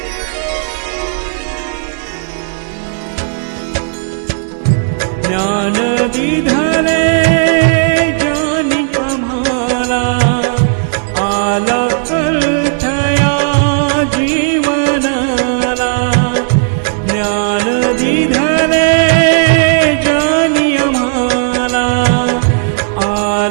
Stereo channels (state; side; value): silent; left; digital silence